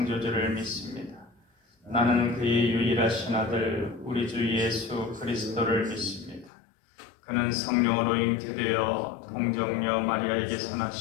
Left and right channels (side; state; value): right; drops out; at 6.5 s